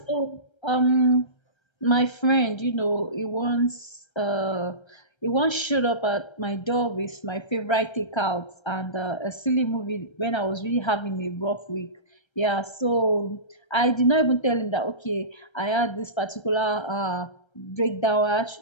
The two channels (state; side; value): late; right; 1.3 ms